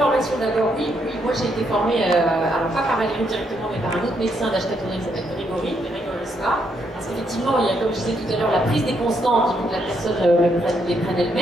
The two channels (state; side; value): normal; both; correlation 0.76